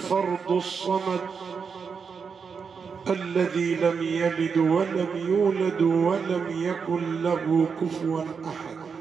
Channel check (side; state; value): left; quieter; 5.9 dB